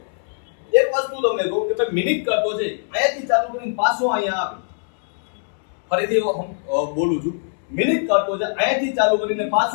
એક વસ્તુ તમને કહું કે ભાઈ મિનિટ કાંટો છે, અહીંયાથી ચાલુ કરીને પાછો અહીંયા આવે. ફરીથી બોલું છું, મિનિટ કાંટો છે, અહીંયાથી ચાલુ કરીને પાછો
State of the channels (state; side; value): silent; right; 65 dB below the other